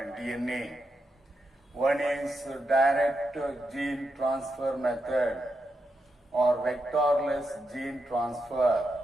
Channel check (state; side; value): normal; both; correlation 0.85